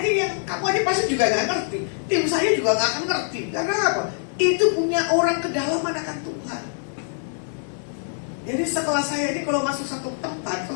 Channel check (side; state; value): right; silent; 63 dB below the other